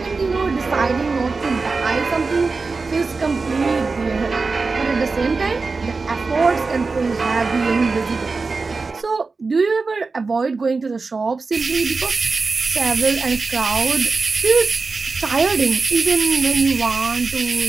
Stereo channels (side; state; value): left; quieter; 4.2 dB